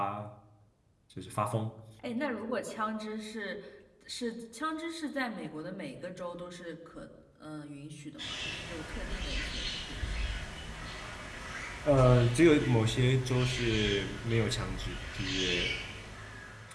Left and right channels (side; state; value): both; identical; correlation 1.00